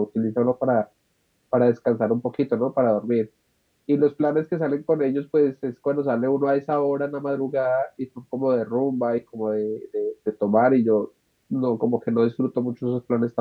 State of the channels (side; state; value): both; identical; correlation 1.00